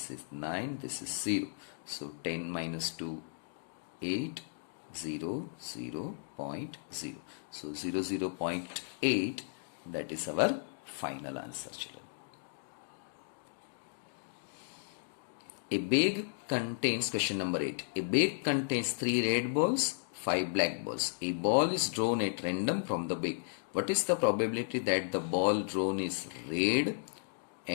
is 9. This is 0. So 10 minus 2, 8. 0, 0.0. So 0.8, that is our final answer children. A bag contains, question number 8. A bag contains 3 red balls, 5 black balls. A ball is drawn at random from the bag. What is the probability that the ball drawn is red?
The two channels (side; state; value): right; silent; digital silence